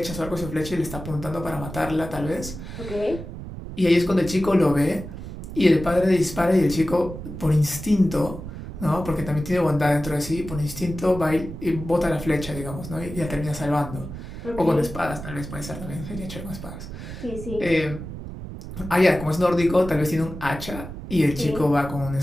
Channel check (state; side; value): noise; right; rumble, 10 dB below the sound